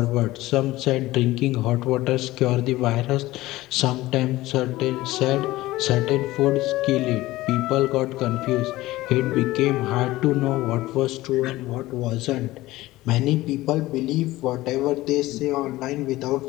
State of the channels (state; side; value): quieter; right; 17.7 dB